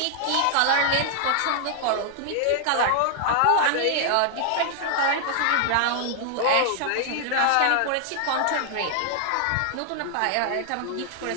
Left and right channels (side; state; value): both; different; correlation 0.00